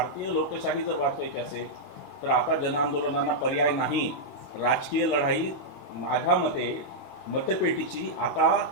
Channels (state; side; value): late; left; 6.4 ms